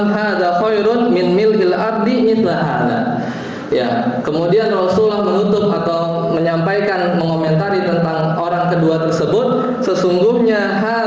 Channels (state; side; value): identical; both; correlation 1.00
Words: hadza khairun min mil'il ardi mithla hadza. Ya, kemudian Rasulullah menutup atau menyampaikan, mengomentari tentang orang kedua tersebut, sesungguhnya